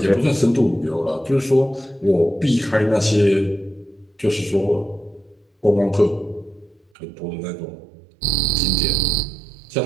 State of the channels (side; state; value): left; drops out; at 6.8 s